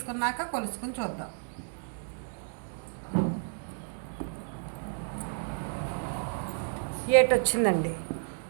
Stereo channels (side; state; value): left; silent; digital silence